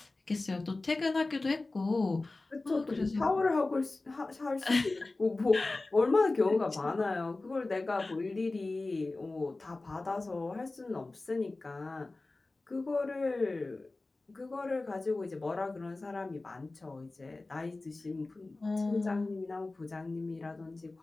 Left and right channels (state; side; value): quieter; right; 3.2 dB